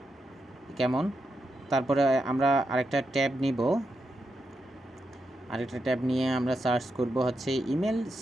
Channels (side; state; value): both; normal; correlation 0.85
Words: কেমন। তারপরে আমরা আরেকটা ট্যাব নিয়ে আমরা সার্চ করব হচ্ছে ইমেল